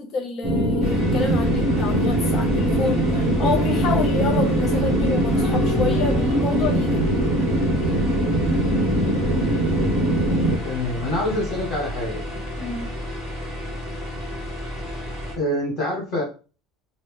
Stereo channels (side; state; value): both; normal; correlation 0.44